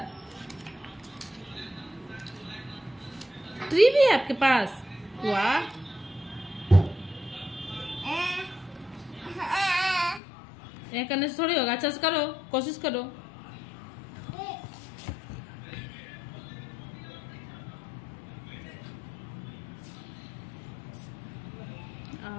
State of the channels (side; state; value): right; drops out; at 10.2 s